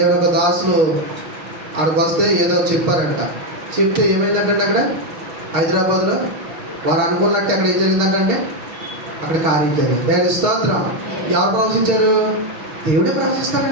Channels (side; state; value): left; late; 6.4 ms